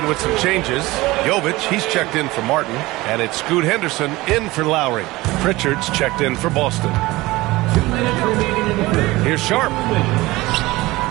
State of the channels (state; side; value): quieter; left; 19.9 dB